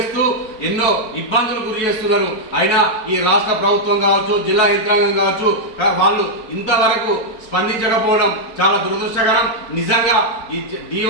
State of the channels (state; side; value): late; right; 4.6 ms